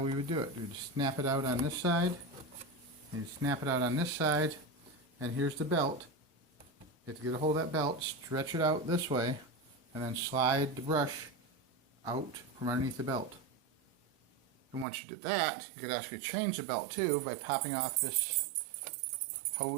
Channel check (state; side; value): drops out; left; at 14.9 s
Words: we would do it. We'd snap it out on this side, and you snap it out on this side, and here's the belt. You have to get a hold of that belt, stretch it out this way, and then slide the brush out from underneath the belt. And once you did that, you could actually change the belt too by popping off this